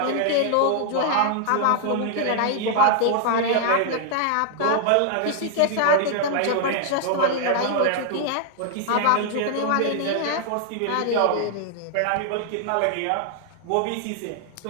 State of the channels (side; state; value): both; different; correlation -0.01